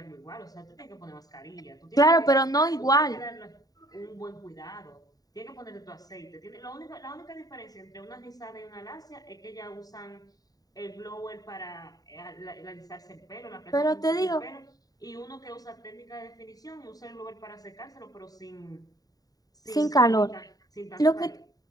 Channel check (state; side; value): late; right; 0.18 ms